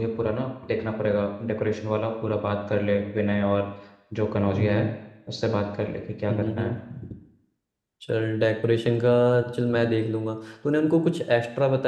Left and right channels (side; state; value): both; identical; correlation 1.00